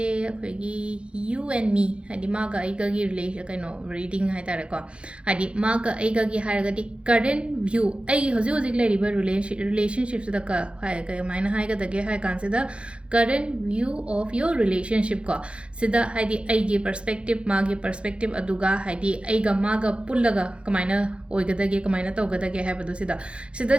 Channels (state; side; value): late; left; 0.058 ms